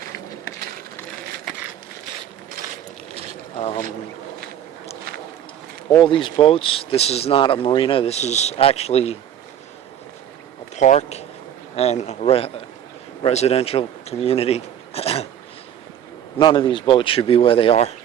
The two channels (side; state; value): left; quieter; 10.1 dB